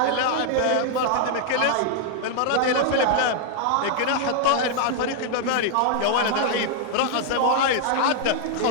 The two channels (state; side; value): different; both; correlation 0.00